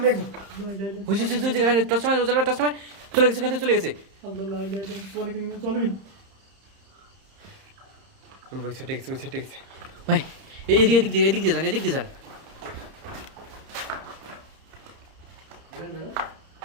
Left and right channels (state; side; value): late; left; 31 ms